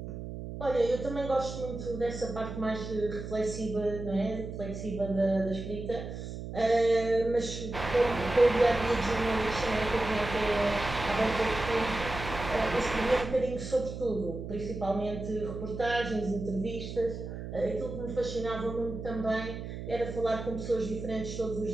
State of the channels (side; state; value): right; noise; hum, 8 dB below the sound